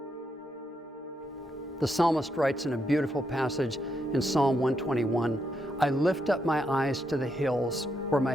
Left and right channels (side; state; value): both; normal; correlation 0.80